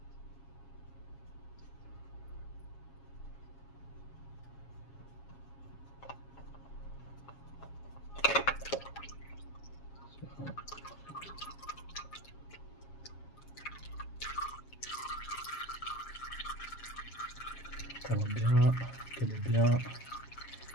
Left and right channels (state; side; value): late; right; 7.3 ms